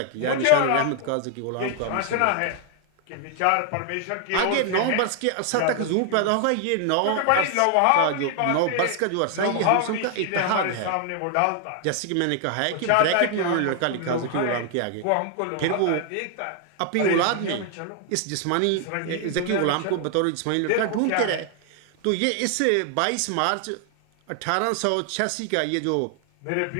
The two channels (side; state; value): both; different; correlation 0.00